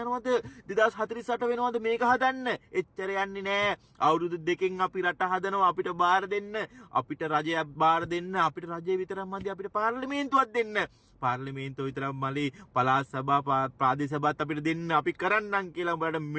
2048 වෙනවද මේක හදන්න එච්චර යන්නේ නෑ අවුරුදු දෙකෙන් අපි රට හදනවා අපිට බාර දෙන්න අපිට රජයක් බාර දෙන්න අපිට රජය විතරක් මදි අපිට පාර්ලිමේන්තුවක් දෙන්න පාර්ලිමේන්තුව විතරක් මලි පළාත් සභා ප්‍රාදේශ සභාත් අපිට දෙන්න අපි කරන්නම් කියලා උඹලට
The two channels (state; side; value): identical; both; correlation 1.00